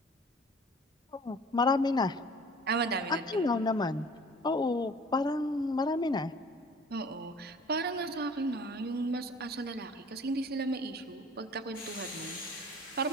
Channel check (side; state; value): both; normal; correlation 0.48